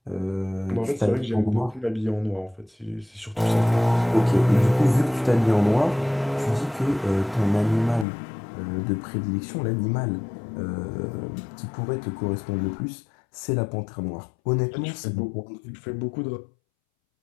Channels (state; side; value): drops out; right; at 8.1 s